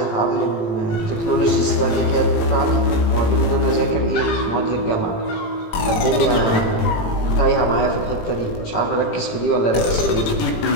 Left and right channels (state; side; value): late; right; 18 ms